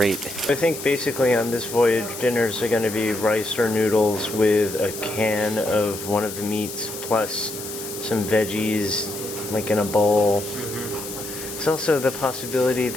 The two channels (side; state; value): left; noise; hiss, 10 dB below the sound